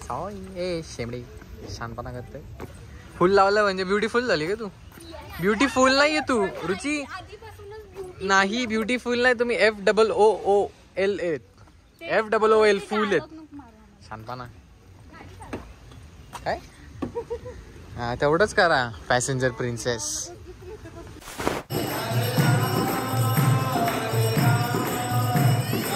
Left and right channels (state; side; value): identical; both; correlation 1.00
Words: ए शेमडी शानपणा करते फुल लावलं म्हणजे ब्युटीफुल झाली का तू ब्युटीफुल नाहीये तू रुची नाही ब्युटीफुल नाही तुम्ही FOOL FOOL फुल आहेत शानपणा काय हा तेवढंच करा पॅसेंजर प्रिन्सेस